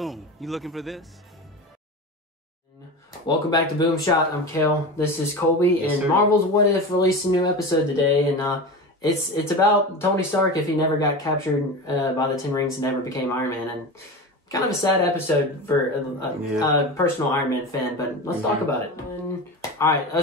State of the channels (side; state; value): both; normal; correlation 0.27